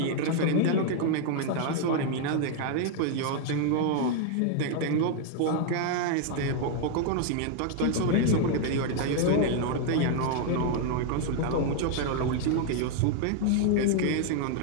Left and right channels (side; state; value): both; different; correlation 0.00